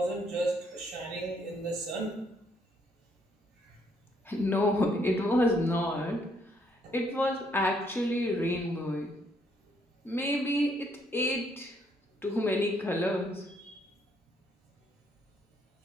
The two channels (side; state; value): both; normal; correlation 0.70